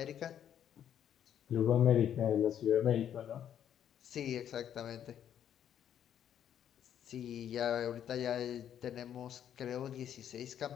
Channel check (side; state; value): right; quieter; 9.8 dB